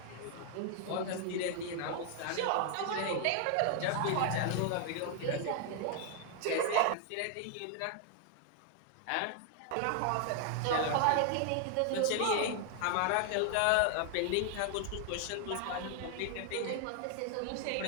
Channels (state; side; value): different; both; correlation 0.00